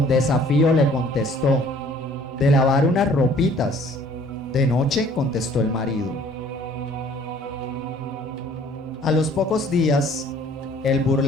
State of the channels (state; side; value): normal; both; correlation 0.55